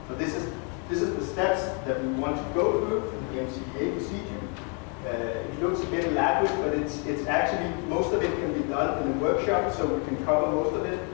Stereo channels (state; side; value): quieter; right; 37.5 dB